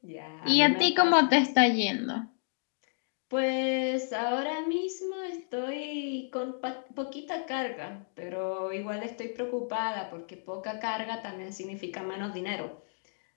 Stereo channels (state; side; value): silent; right; digital silence